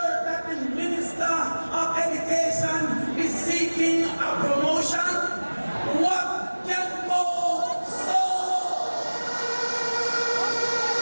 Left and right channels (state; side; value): inverted; both; correlation -1.00